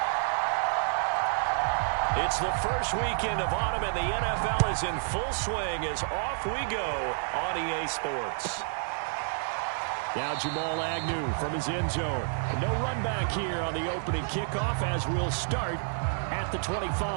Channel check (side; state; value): left; silent; digital silence